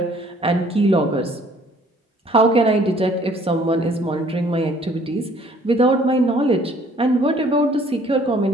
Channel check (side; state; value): both; normal; correlation 0.58